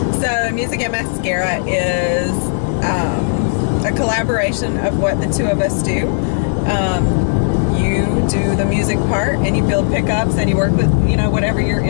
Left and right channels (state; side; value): silent; right; digital silence